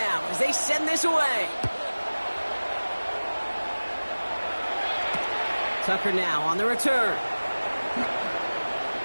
as they send this away. Tucker now on the return.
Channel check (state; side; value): inverted; both; correlation -1.00